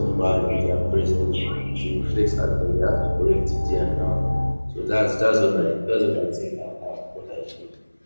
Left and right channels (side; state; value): both; inverted; correlation -1.00